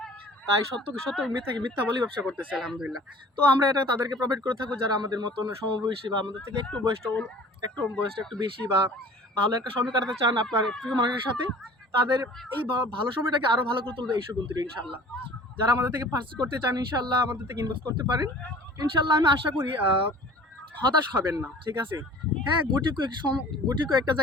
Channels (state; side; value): normal; both; correlation 0.47